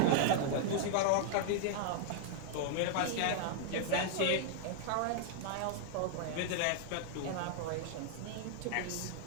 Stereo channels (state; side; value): different; both; correlation -0.01